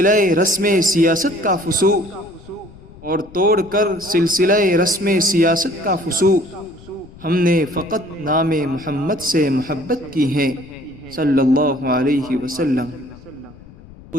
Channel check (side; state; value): left; noise; rumble, 21 dB below the sound